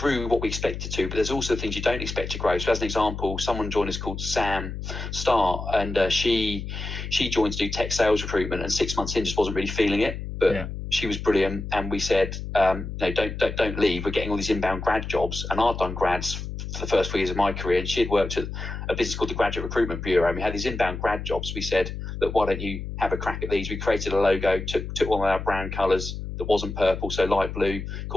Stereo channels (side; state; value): left; noise; hum, 7 dB below the sound